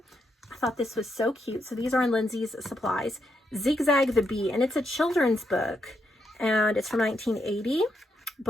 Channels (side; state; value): both; normal; correlation 0.80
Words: I thought this was so cute. So these are in Lindsay's Supplies. Zigzag the Bee, and it's a children's book, and it's from 1980.